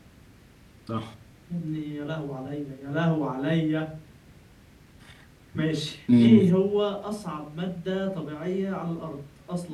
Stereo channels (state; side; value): identical; both; correlation 1.00